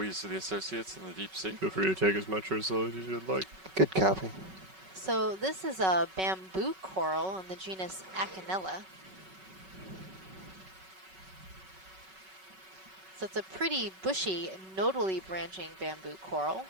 the associates in the deep sea. Feel free to take as much or as little as you'd like. Good copy. So this is a bamboo coral in the genus Acanella. So it's a pretty bushy, nodally branching bamboo coral.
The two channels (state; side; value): late; left; 5.3 ms